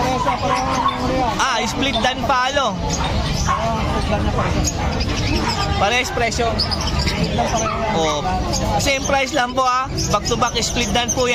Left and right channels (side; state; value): both; identical; correlation 1.00